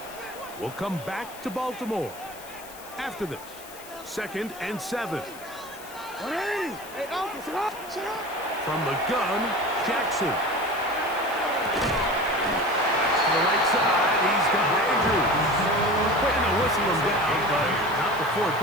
We'll come back to Baltimore after this. 2nd and 7. From the gun, Jackson. To the right side, he's got Andrews. Trying to whistle him down, but not before he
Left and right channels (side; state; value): left; noise; hiss, 18 dB below the sound